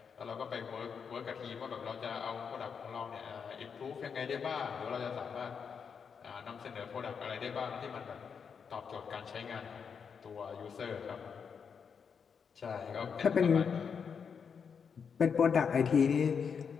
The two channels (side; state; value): right; quieter; 6.4 dB